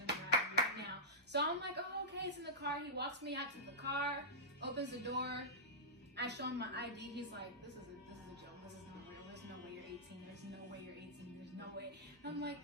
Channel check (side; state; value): both; normal; correlation -0.14